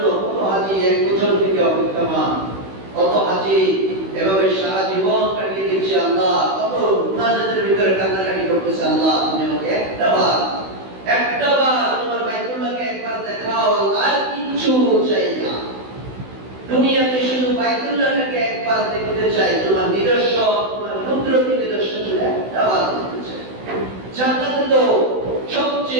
কত হাজী এক বছর থেকে অপেক্ষমান, কত হাজী এভাবে সারা জীবন কাটিয়ে দিচ্ছে। আল্লাহ কত মুনাজাতের ভিতরে কান্নাকাটি করতেছে, আল্লাহ তুমি আমাকে একটা বার তোমার বাইতুল্লাহকে একবার দেখাও, আর কিছু চাই না। দুনিয়াতে শুধু বাইতুল্লাহকে একবার দেখতে চাই, তোমার নিদর্শন, তোমার কুদরতি নিদর্শন একটা বার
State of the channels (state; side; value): late; left; 16 ms